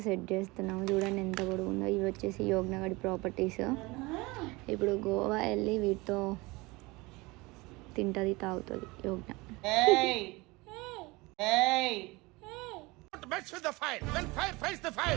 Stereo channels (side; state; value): left; quieter; 23.5 dB